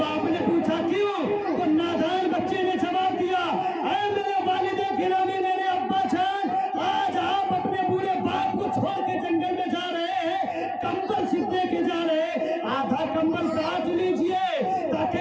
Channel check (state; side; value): identical; both; correlation 1.00